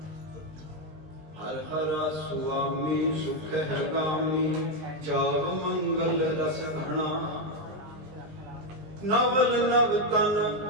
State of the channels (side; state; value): left; late; 19 ms